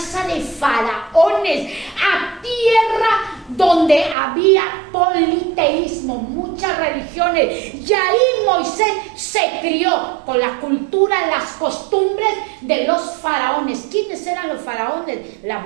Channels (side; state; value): left; drops out; at 4.2 s